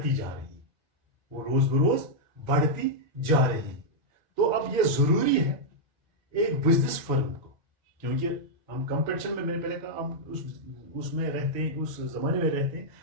जा रही हैं. तो अब ये जरूरी है एक बिजनेस फर्म को, क्योंकि हम कंपटीशन में मैंने पहले कहा हम उसमें रहते हैं उस जमाने में रहते हैं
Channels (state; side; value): normal; both; correlation -0.06